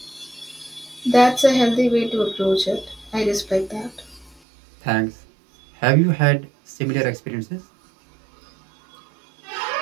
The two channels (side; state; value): left; drops out; at 4.4 s